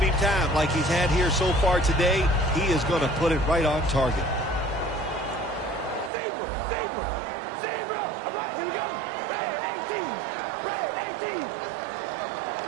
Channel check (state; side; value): drops out; left; at 6.1 s